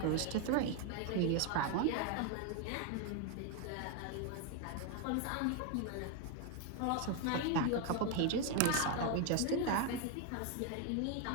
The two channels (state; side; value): different; both; correlation 0.01